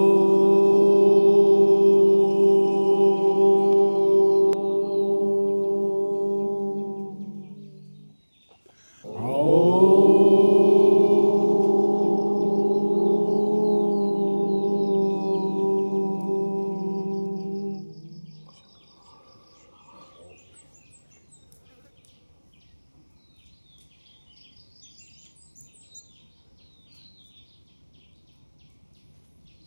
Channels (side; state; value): both; inverted; correlation -1.00